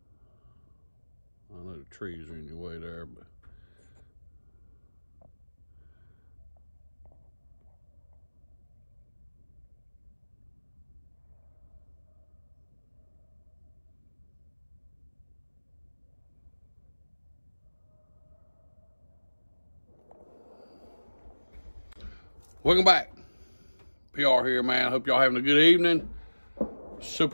I know the trees are in your way there, but. Welcome back. PR here, man. Hope y'all having a good evening.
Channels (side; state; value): both; inverted; correlation -1.00